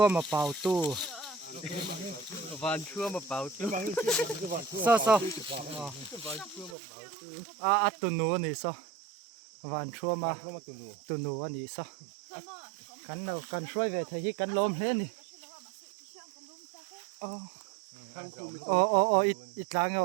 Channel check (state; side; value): drops out; left; at 6.8 s